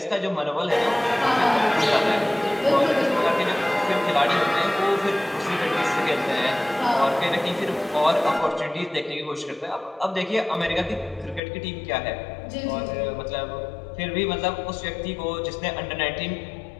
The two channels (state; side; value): drops out; right; at 11.4 s